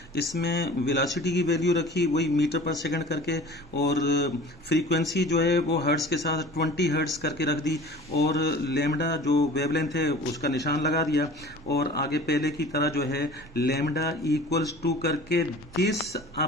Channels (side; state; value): both; normal; correlation 0.43